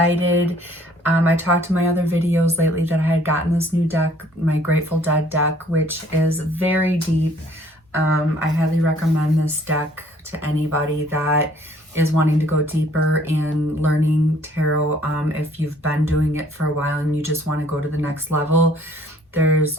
I talked to my other videos lately that I had gotten this new deck, my Grateful Dead deck, which is very deep. I highly recommend this deck to anybody that is wanting to go deeper in learning tarot. If you've been doing it for a while and you just want to go to the next level, there's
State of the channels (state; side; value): normal; both; correlation 0.59